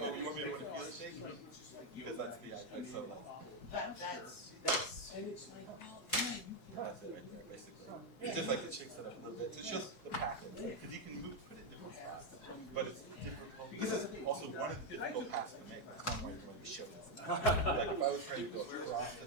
you want me to feel it shake? Because that's the idea, so like, that's it right there, basically. It's just like it shakes it up a little bit. So it shows the pattern, because you can put it in different spots, but it's difficult. This is also one of the difficult paths to make. That's one way you're going to show this. Like if I was trying to go across to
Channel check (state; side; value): late; right; 4.7 ms